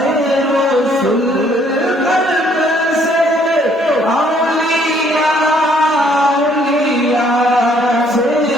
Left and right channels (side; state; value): both; normal; correlation 0.65